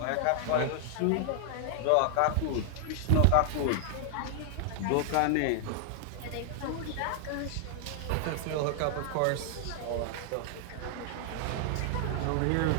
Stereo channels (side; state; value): both; different; correlation 0.00